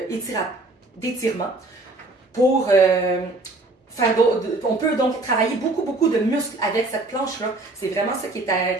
d'étirement pour on peut donc travailler beaucoup de muscles avec cette planche-là. C'est vraiment ça qui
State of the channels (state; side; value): quieter; left; 3.0 dB